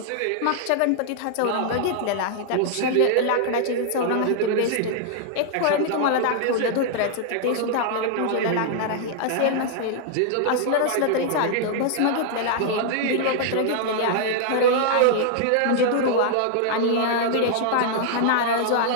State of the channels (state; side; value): different; both; correlation -0.01